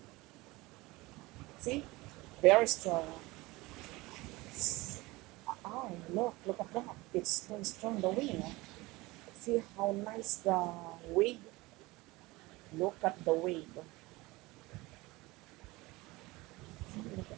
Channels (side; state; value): left; quieter; 21.6 dB